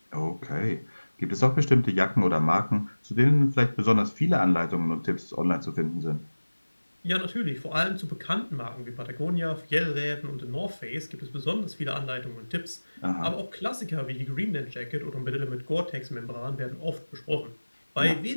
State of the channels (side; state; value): both; inverted; correlation -1.00